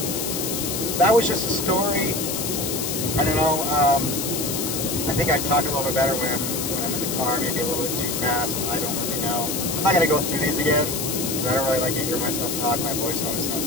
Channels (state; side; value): noise; left; hiss, 3 dB below the sound